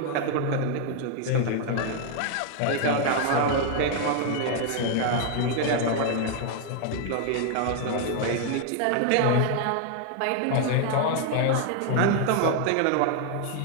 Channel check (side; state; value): both; different; correlation 0.00